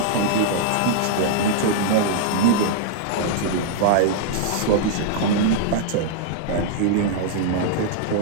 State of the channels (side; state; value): both; different; correlation -0.01